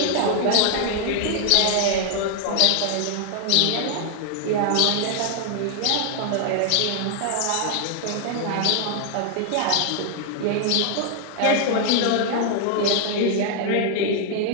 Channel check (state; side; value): different; both; correlation 0.00